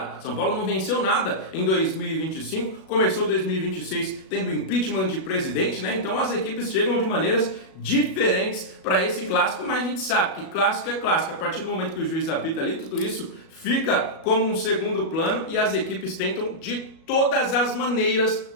São Paulo não venceu nada em 2025, começou 2026 tendo impeachment de presidente, né? Então as equipes chegam de maneiras diferentes para esse clássico, mas a gente sabe que clássico é clássico. A partir do momento que o juiz apita ali, tudo isso fica como um segundo plano e as equipes tentam de todas as maneiras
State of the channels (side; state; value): right; late; 37 ms